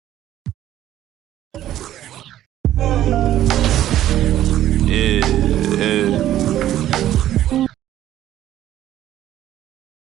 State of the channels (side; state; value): left; quieter; 12.7 dB